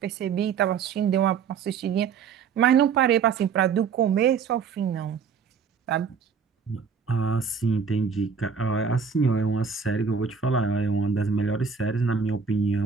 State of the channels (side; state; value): left; quieter; 6.2 dB